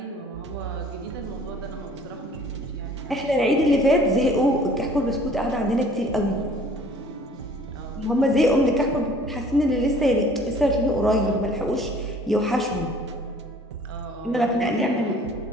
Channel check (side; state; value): both; normal; correlation 0.53